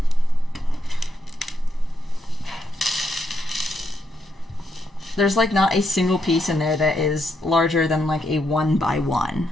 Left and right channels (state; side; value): normal; both; correlation 0.79